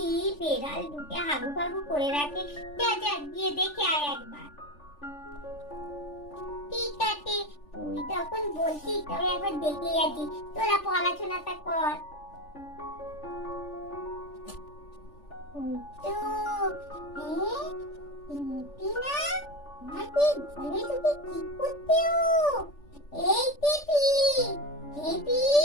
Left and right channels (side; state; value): right; late; 3.4 ms